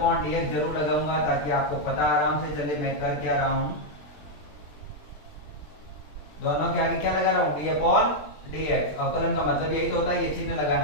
डी एक्स जरूर लगाऊंगा ताकि आपको पता आराम से चले मैं कर क्या रहा हूं। दोनों के आगे क्या लगा रहा हूं, डी अपॉन डी एक्स। अवकलन का मतलब यही तो होता है, ये चिन्ह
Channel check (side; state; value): right; late; 20 ms